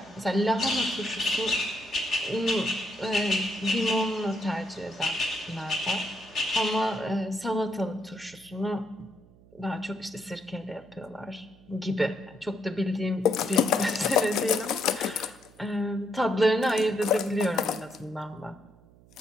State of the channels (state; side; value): noise; right; hum, 26 dB below the sound